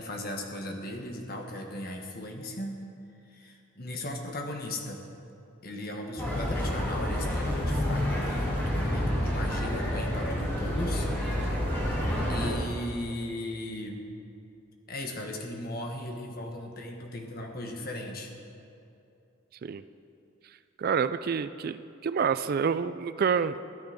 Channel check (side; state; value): both; normal; correlation 0.51